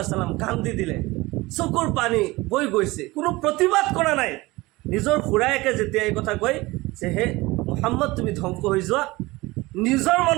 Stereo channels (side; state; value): left; quieter; 21.2 dB